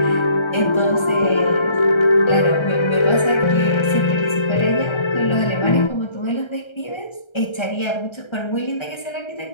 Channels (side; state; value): right; late; 1.3 ms